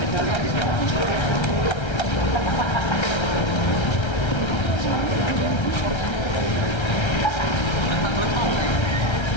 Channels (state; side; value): late; right; 1.3 ms